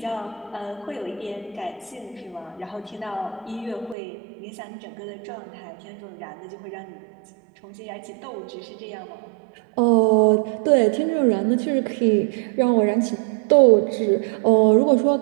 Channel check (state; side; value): drops out; left; at 4.0 s